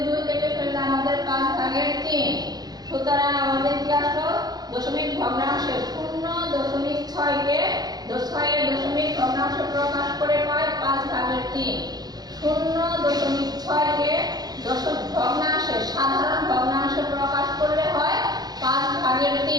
2 কেটে ফেললে আমাদের 5/3। সুতরাং আমাদের কি আসলো? দশমিক ভগ্নাংশে 0.6 কে 6 এর দশমিক ভগ্নাংশ প্রকাশ করে পাই 5/3। 0.6 কে দশমিক ভগ্নাংশে সাধারণ ভগ্নাংশে প্রকাশ করলে হয়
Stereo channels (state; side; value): late; left; 0.19 ms